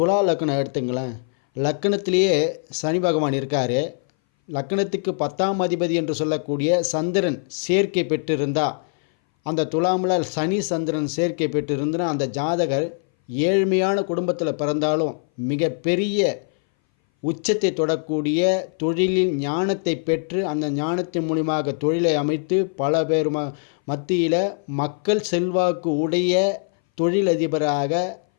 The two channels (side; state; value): right; silent; 60 dB below the other